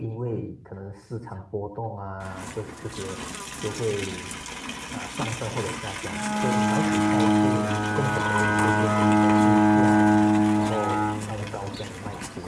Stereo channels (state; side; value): identical; both; correlation 1.00